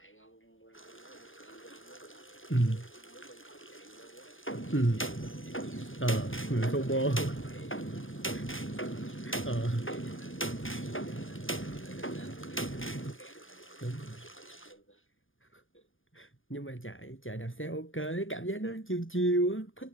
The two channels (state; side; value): late; right; 0.58 ms